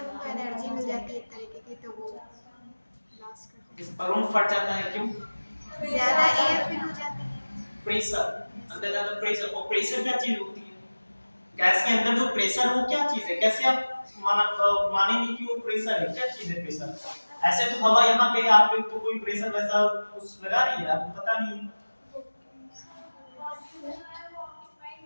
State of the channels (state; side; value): inverted; both; correlation -1.00